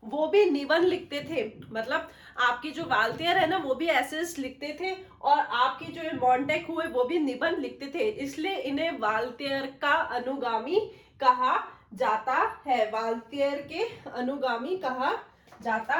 वो भी निबंध लिखते थे। मतलब आपके जो वाल्तेयर है ना वो भी एसेस लिखते थे और आपके जो मॉन्टेक हुए वो भी निबंध लिखते थे, इसलिए इन्हें वाल्तेयर का अनुगामी कहा जाता है। वाल्तेयर के अनुगामी कहा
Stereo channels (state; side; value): identical; both; correlation 1.00